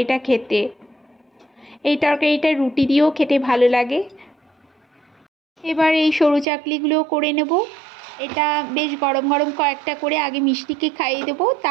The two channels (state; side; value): drops out; left; at 6.5 s